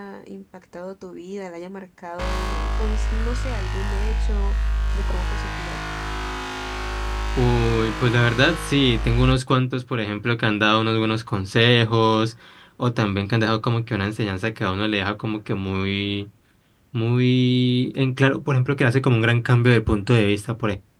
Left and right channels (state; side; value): identical; both; correlation 1.00